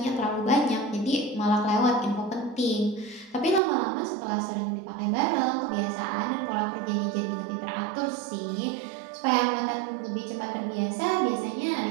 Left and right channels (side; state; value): left; drops out; at 3.6 s